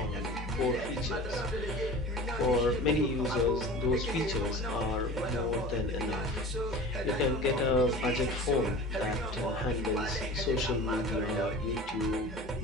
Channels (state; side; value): normal; both; correlation 0.37